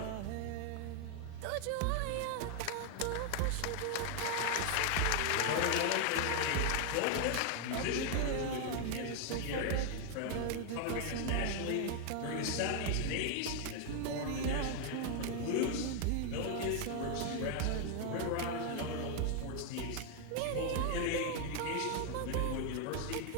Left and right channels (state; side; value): different; both; correlation 0.00